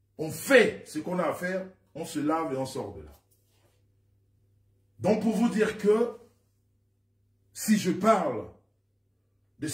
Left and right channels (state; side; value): identical; both; correlation 1.00